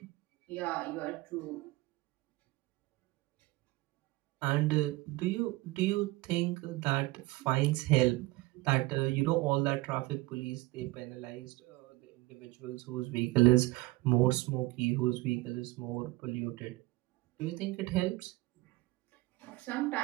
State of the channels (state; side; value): quieter; left; 20.5 dB